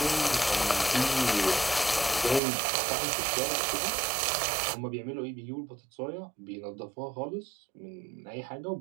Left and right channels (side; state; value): left; drops out; at 2.4 s